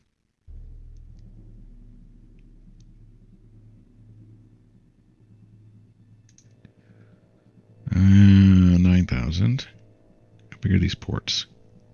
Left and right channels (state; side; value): identical; both; correlation 1.00